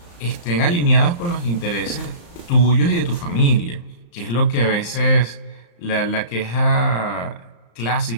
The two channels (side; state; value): right; late; 35 ms